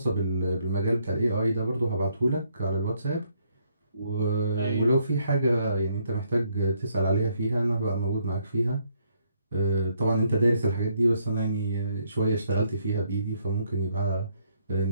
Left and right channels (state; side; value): inverted; both; correlation -0.71